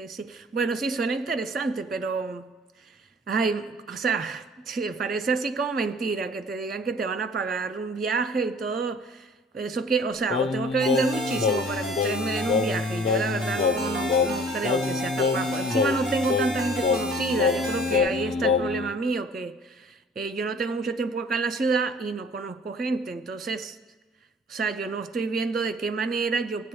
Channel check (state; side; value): normal; both; correlation 0.51